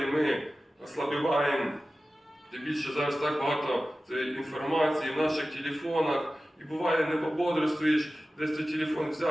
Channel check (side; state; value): both; normal; correlation 0.95